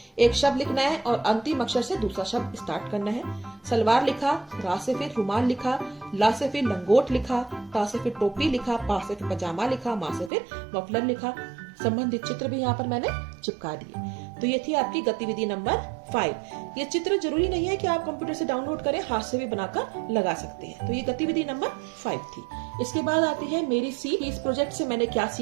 एक शब्द लिखना है और अंतिम अक्षर से दूसरा शब्द स्टार्ट करना है। सलवार लिखा, रा से फिर रुमाल लिखा, ला से फिर लंगोट लिखा, ता से फिर टोपी लिखा, पा से फिर पजामा लिखा, मा से फिर मफलर लिखा। संबंधित चित्र भी यहाँ पर मैंने चिपका दिए। तो ये थी आपकी गतिविधि नंबर 5। ये चित्र जरूरी नहीं है कि आप कंप्यूटर से डाउनलोड करें, हाथ से भी बनाकर लगा सकते हैं। तो ये गतिविधि नंबर 5 थी। इसके बाद आती है मेरी सीख। इस प्रोजेक्ट से मैंने क्या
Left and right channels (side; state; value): left; drops out; at 10.3 s